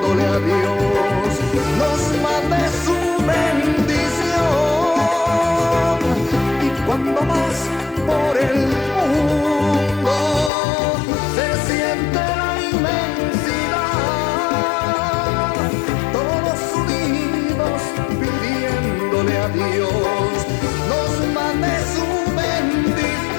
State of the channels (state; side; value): drops out; right; at 10.5 s